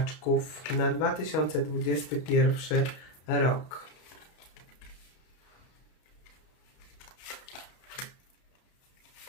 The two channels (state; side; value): late; right; 32 ms